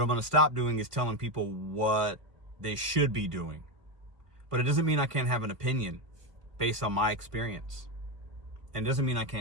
going to stop doing is telling people what they should be doing. But it doesn't mean I can't have an opinion based on my experience. And it doesn't mean I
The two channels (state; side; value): late; left; 1.5 ms